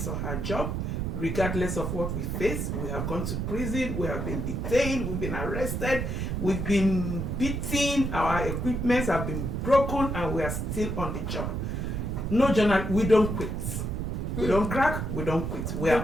or her job, regardless of what we face. We have gone to prison, we have been detained, we've been arrested, we've been beaten, our equipments have been broken, and we are still on the job. No journal, we don't quit. We don't crack, we don't quit. We are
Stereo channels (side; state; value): right; noise; rumble, 2 dB below the sound